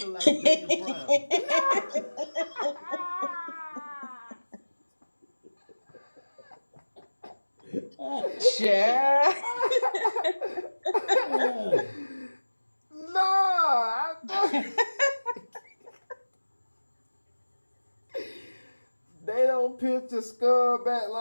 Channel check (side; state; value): both; inverted; correlation -1.00